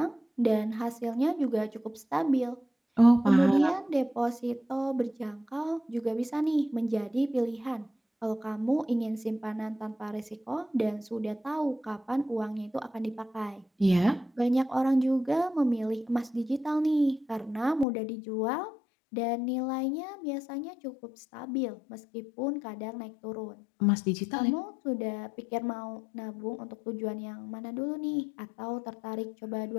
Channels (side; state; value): right; drops out; at 17.9 s